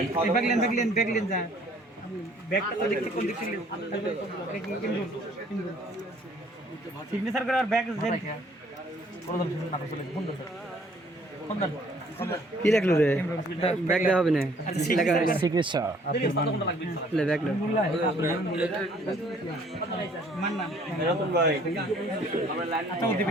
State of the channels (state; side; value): normal; both; correlation 0.60